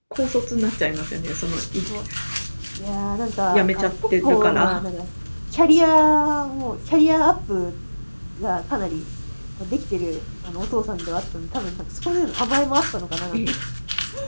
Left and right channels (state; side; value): inverted; both; correlation -1.00